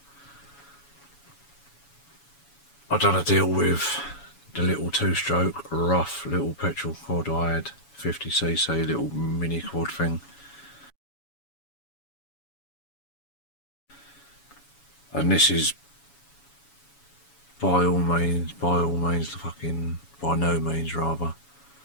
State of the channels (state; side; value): late; right; 7.1 ms